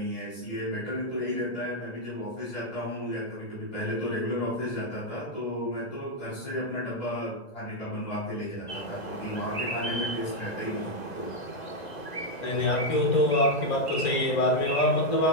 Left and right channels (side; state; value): right; late; 1.9 ms